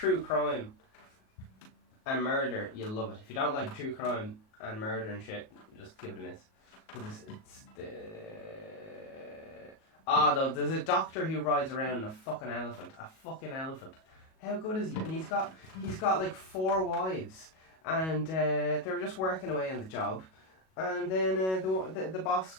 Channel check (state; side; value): late; right; 37 ms